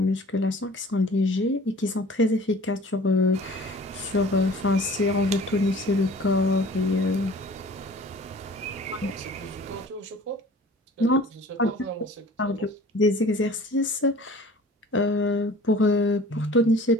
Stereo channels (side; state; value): both; normal; correlation 0.47